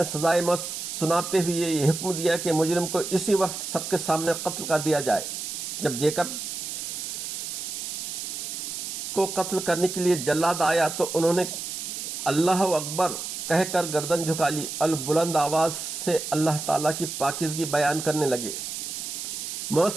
سزائے موت سناتے ہوئے یہ حکم دیا کہ مجرم کو اسی وقت سب کے سامنے قتل کر دیا جائے۔ جب جیکب کو قتل کرنے کے لیے جلاد آیا تو انہوں نے اللہ اکبر کہہ کر گردن جھکا لی اور بلند آواز سے اللہ تعالیٰ کی پاکیزگی بیان کرنے لگے۔ موت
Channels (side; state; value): right; noise; hiss, 6 dB below the sound